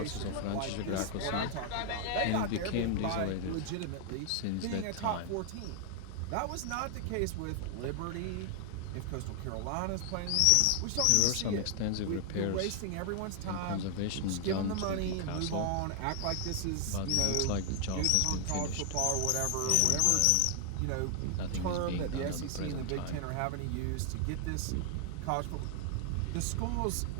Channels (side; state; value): both; different; correlation 0.00